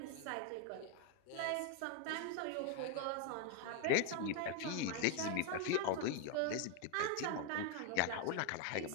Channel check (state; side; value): different; both; correlation 0.00